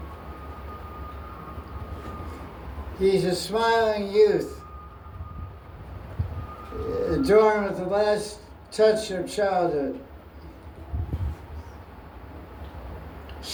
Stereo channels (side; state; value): both; identical; correlation 1.00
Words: He's a smiling youth, adorned with the last touch of childhood.